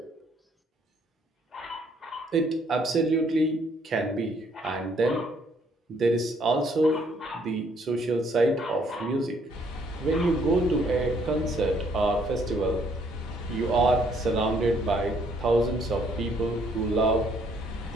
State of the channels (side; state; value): both; normal; correlation 0.66